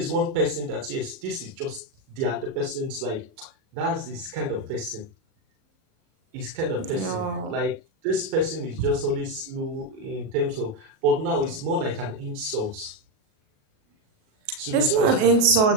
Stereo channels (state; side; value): late; left; 37 ms